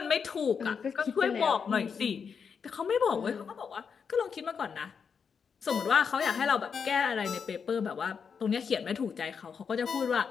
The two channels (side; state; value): right; quieter; 6.3 dB